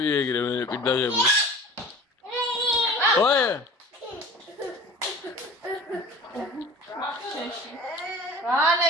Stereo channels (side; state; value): both; normal; correlation 0.41